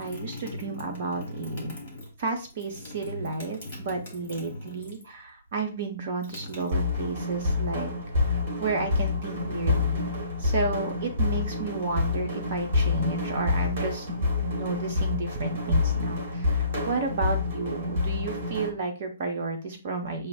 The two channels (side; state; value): both; inverted; correlation -0.54